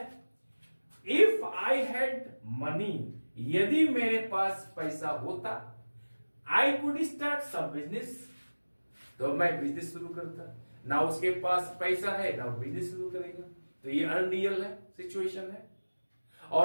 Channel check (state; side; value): inverted; both; correlation -1.00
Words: इफ आई हैड मनी, यदि मेरे पास पैसा होता, I could start some business, तो मैं बिजनेस शुरू करता। ना उसके पास पैसा है, ना वो बिजनेस शुरू करेगा, तो ये अनरियल है, सिचुएशन है।